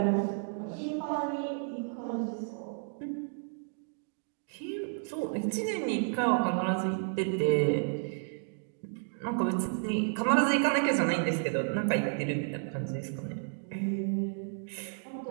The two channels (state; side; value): silent; left; digital silence